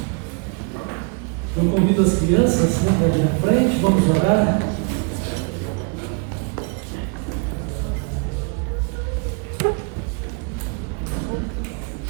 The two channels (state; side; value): quieter; left; 34.6 dB